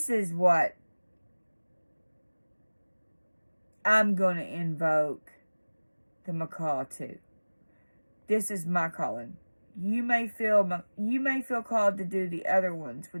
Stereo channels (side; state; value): both; inverted; correlation -1.00